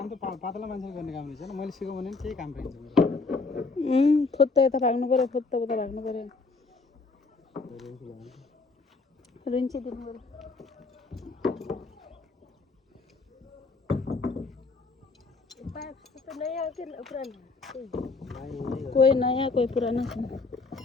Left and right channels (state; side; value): quieter; right; 3.9 dB